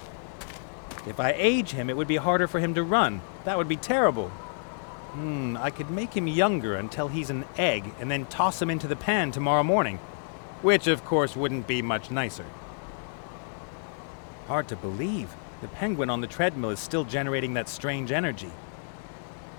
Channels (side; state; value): right; silent; 59 dB below the other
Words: If I age him, it would be harder for him to run. That would be terrible. I could make him younger until he's an egg and then toss him into the pan tomorrow morning. Which, of course, wouldn't be much nicer. Hard to believe. The penguin on the treadmill is still generating that strange energy.